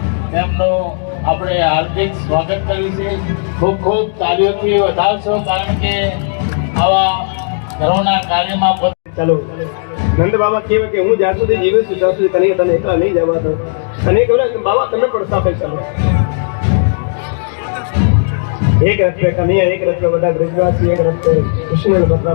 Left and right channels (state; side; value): silent; right; digital silence